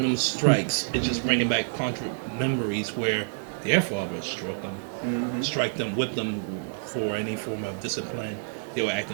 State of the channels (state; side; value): silent; left; digital silence